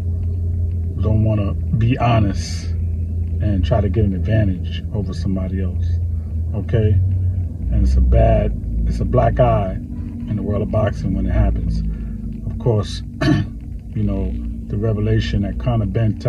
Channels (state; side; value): identical; both; correlation 1.00